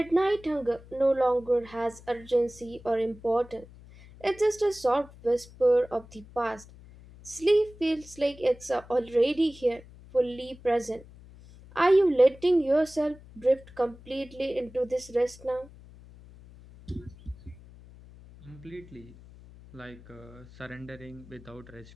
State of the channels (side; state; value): left; noise; hum, 21 dB below the sound